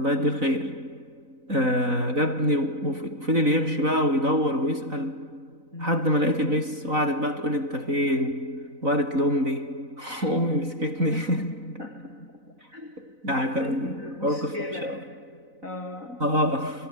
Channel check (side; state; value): left; late; 4.0 ms